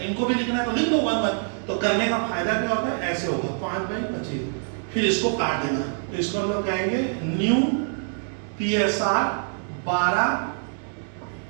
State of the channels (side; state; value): left; silent; 62 dB below the other